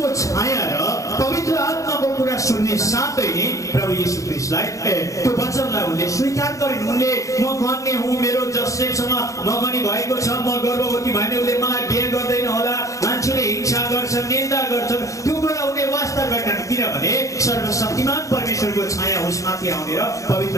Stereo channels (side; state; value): right; late; 0.16 ms